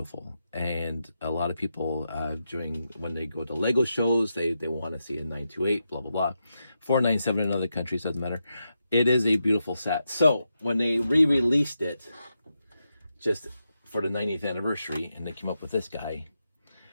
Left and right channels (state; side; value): inverted; both; correlation -0.86